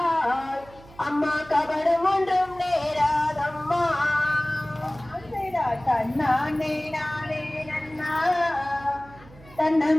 அம்மா கபடம் ஒன்றும் நேராதம்மா தன்னானே நானே நன்னா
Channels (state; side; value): noise; right; hum, 22 dB below the sound